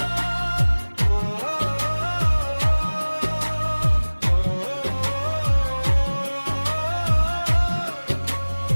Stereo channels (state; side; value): inverted; both; correlation -1.00